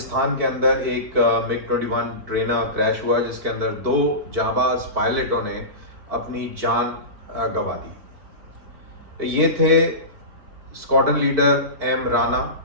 के अंदर एक मिग 21 ट्रेनर क्रैश हुआ जिसके अंदर दो जांबाज पायलटों ने अपनी जान गंवा दी। ये थे स्क्वाड्रन लीडर एम राणा,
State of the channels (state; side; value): late; left; 4.5 ms